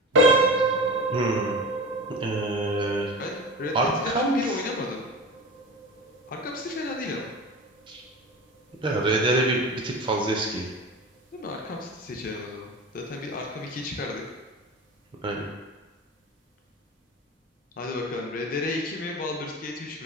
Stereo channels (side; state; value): both; normal; correlation 0.30